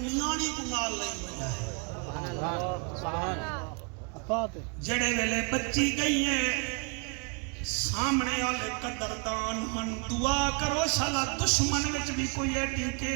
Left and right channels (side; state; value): left; quieter; 34.4 dB